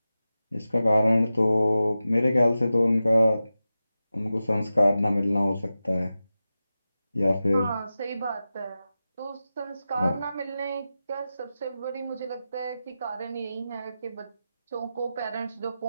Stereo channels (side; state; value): both; inverted; correlation -0.93